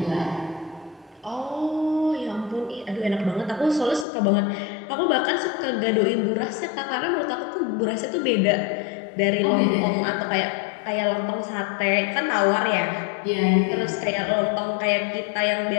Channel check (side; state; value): right; drops out; at 4.0 s